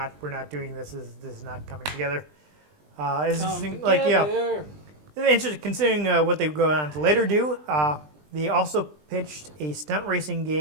doing this. This is not coming together. It's interesting, like, yeah. Interesting, considering what they go on to later do. They also pitched a stunt racing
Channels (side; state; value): left; late; 20 ms